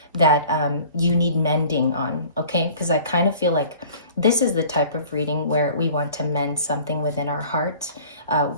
that you need mending on, okay? Because I kind of feel like this is the type of reading where we want to mend something within our heart.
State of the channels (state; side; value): inverted; both; correlation -0.48